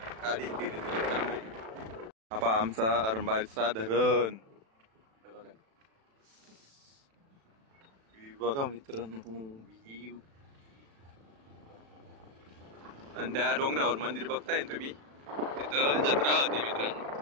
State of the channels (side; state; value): left; late; 36 ms